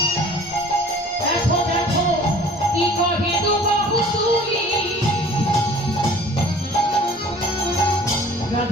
দেখো দেখো কি কহে দু বাহু তুলি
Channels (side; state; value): both; normal; correlation 0.49